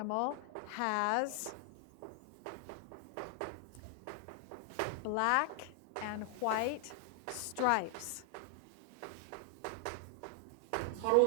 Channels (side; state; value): both; different; correlation 0.00